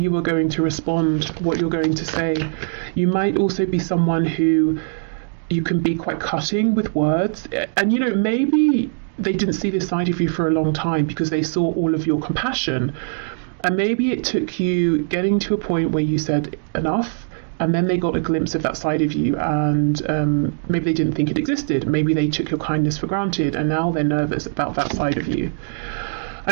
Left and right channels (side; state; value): left; silent; digital silence